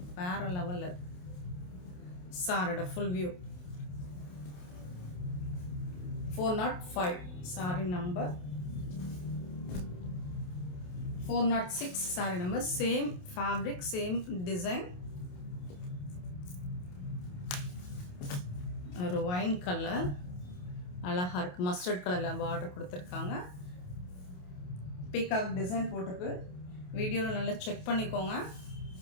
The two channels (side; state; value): right; late; 28 ms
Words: வேறு லெவலில். சாரியோட full view 405 sorry number 406 sorry number. Same fabric, same design. ஒரு ஒயின் கலர் அழகாக இருக்குது. மஸ்டர்ட் கலரில் பார்டர் கொடுத்துருக்காங்க. பீகாக் டிசைன் போட்டிருக்கு. வீடியோவில் நல்லா செக் பண்ணிக்கோங்க.